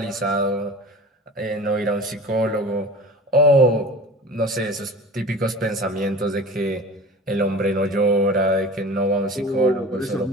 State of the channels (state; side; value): normal; both; correlation 0.38